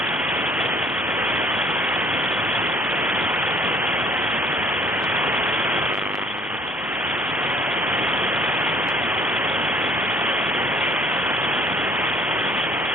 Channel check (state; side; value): normal; both; correlation 0.57